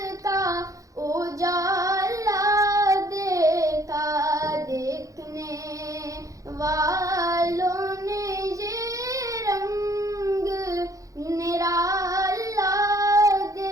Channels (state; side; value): late; left; 0.16 ms